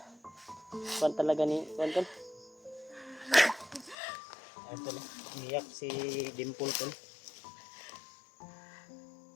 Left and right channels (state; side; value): drops out; right; at 4.0 s